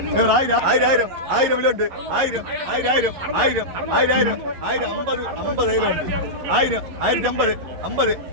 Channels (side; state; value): left; late; 11 ms